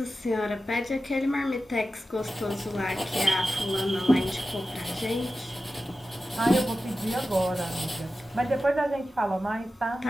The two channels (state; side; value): normal; both; correlation 0.93